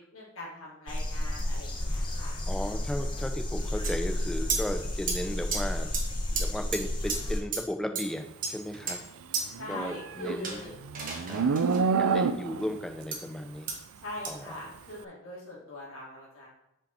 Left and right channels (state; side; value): normal; both; correlation 0.48